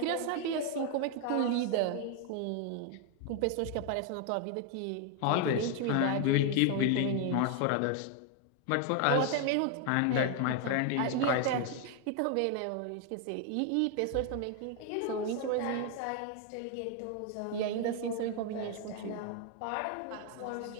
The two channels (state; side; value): different; both; correlation 0.00